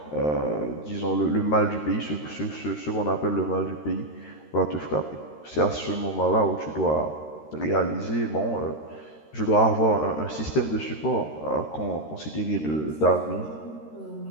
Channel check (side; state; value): right; late; 13 ms